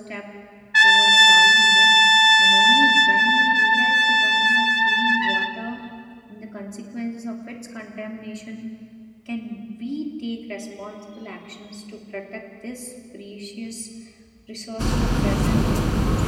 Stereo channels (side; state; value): both; identical; correlation 1.00